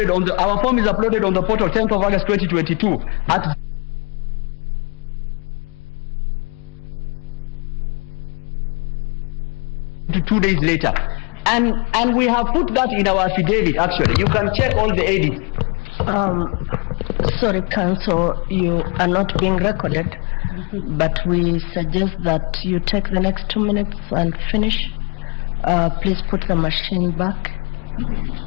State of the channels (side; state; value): right; quieter; 31.7 dB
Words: on our form is uploaded on the portal 10th of August 2022 at to 2 days later. And we have put that in our affidavit actually. You can check all the edits. Sorry, Counsel, you are not being recorded, but we suggest that you take the next 2 minutes and finish. Please put the machine back.